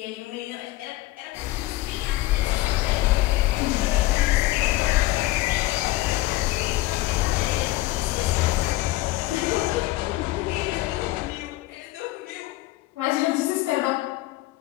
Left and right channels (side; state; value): right; quieter; 17.8 dB